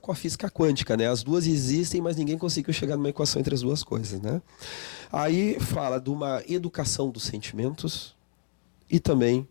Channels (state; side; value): silent; right; digital silence